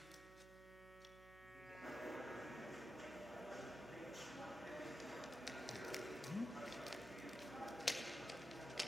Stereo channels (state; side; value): noise; right; hum, 17 dB below the sound